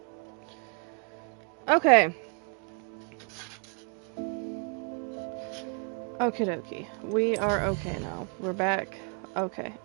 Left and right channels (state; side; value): quieter; left; 37.4 dB